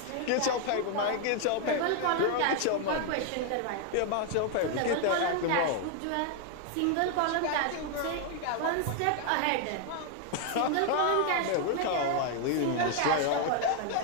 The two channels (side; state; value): both; different; correlation 0.00